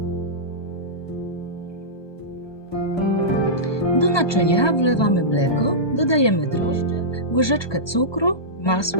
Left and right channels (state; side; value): late; right; 1.2 ms